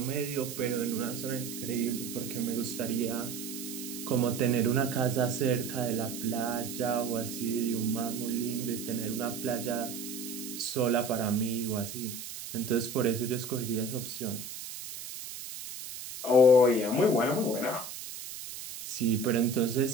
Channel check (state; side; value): noise; right; hiss, 9 dB below the sound